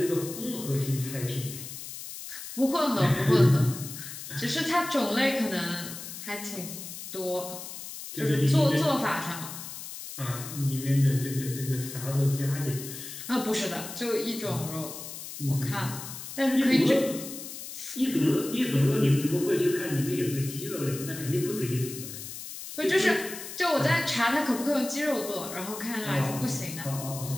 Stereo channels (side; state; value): left; noise; hiss, 10 dB below the sound